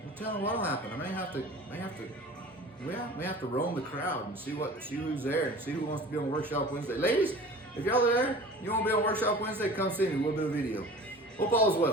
I'm telling you what'll happen. I may have to roam the crowd and see who's there and see who wants to be on Workshop Wednesday. Ladies, if y'all are there, you want to be on Workshop Wednesday, come see me. We'll do a video. Hope all is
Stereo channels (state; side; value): normal; both; correlation 0.41